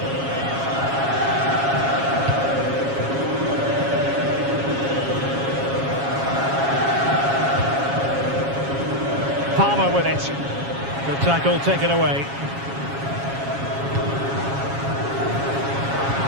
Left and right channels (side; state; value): left; late; 7.3 ms